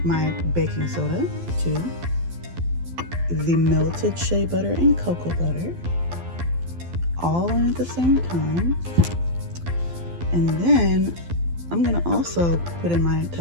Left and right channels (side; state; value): left; late; 12 ms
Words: my baking soda to the melted shea butter and cocoa butter, all in at the same time. And then I'm going to also put in my